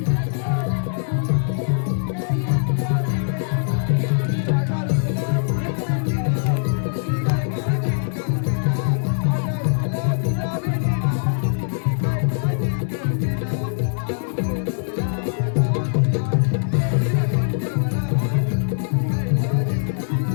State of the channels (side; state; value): right; silent; digital silence